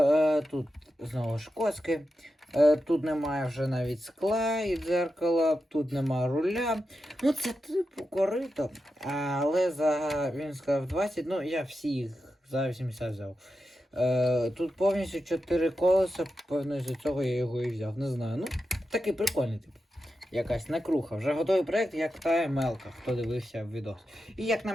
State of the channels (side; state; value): both; normal; correlation 0.89